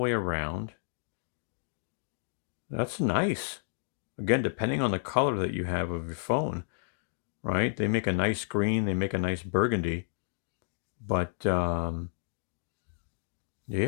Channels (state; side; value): silent; right; 57 dB below the other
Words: around. That's nice. Again, depending on the color that you have of your phone, right? They make a nice green, they make a nice burgundy. But